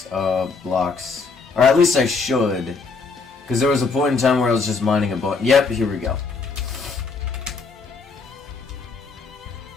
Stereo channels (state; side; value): quieter; right; 4.5 dB